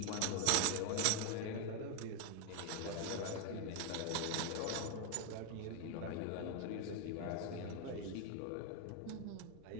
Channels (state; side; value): different; both; correlation 0.01